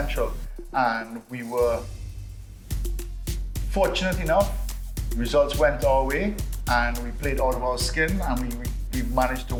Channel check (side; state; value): both; identical; correlation 1.00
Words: And we were fortunate enough, results went our way and we played out of our skin and we managed to